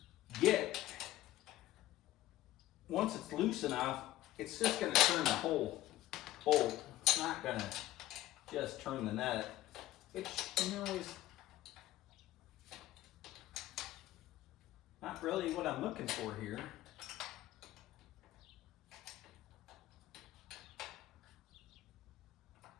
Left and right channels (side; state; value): right; quieter; 15.0 dB